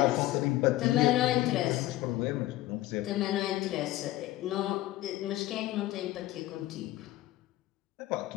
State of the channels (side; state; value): right; quieter; 16.3 dB